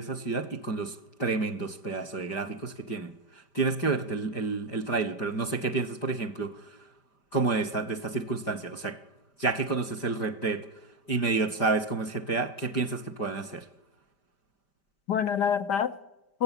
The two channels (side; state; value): right; late; 5.1 ms